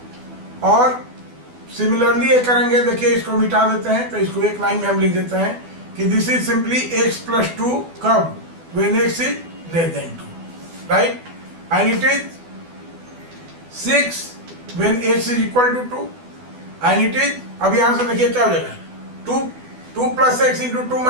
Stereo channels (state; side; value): late; left; 12 ms